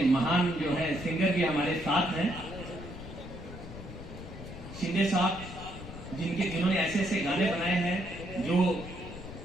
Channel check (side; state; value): left; noise; rumble, 12 dB below the sound